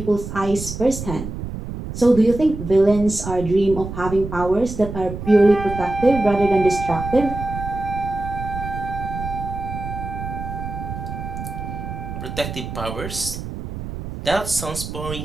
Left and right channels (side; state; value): right; noise; rumble, 8 dB below the sound